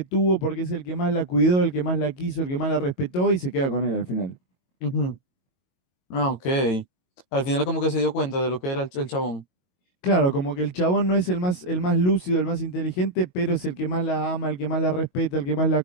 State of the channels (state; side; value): late; right; 22 ms